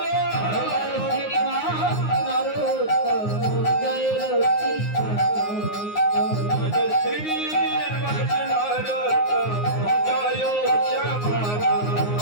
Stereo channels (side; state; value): right; late; 9.6 ms